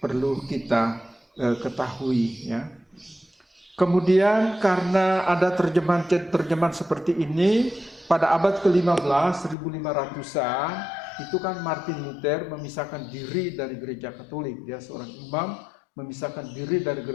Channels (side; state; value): right; drops out; at 9.6 s